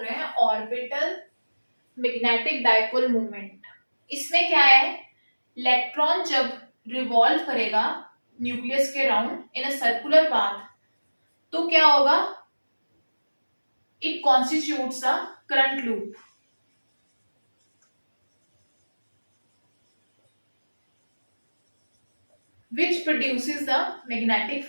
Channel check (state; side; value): inverted; both; correlation -1.00